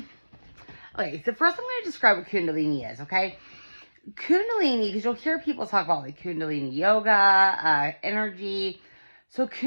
so first I'm going to describe what Kundalini is, okay? Kundalini, because you'll hear people talk about like Kundalini yoga, energy. So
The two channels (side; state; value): both; inverted; correlation -1.00